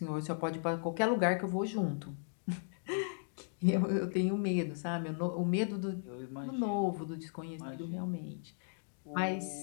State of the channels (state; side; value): silent; right; digital silence